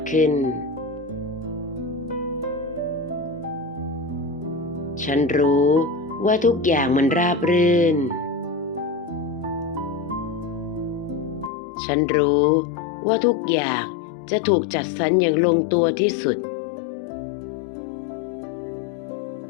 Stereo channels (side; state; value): right; drops out; at 11.5 s